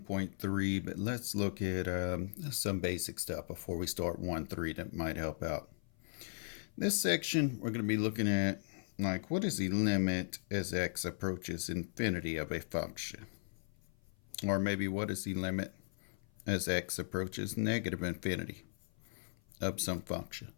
but let's look at some basic stuff before we start 1.3 that might help out. This section, we're going to be looking at, like, what is the limit as x approaches infinity of a function? Or maybe what is the limit as x approaches negative infinity of some function?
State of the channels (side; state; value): right; silent; 53 dB below the other